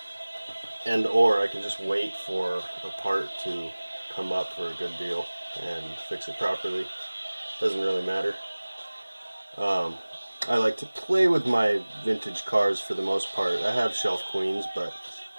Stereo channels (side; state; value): both; inverted; correlation -1.00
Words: and or I can just wait for a part to come up for a good deal and fix it properly. Doesn't really matter. I like to play with my vintage cars for the most part. I have shelf queens, but